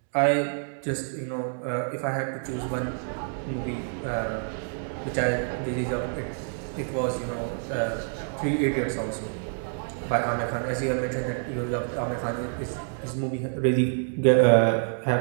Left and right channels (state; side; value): silent; left; digital silence